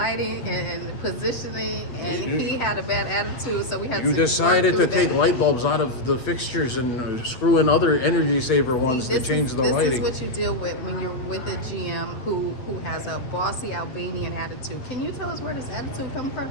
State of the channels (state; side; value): late; right; 8.2 ms